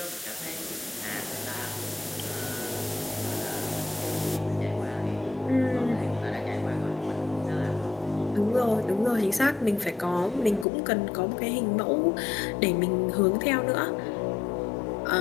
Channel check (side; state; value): right; drops out; at 10.7 s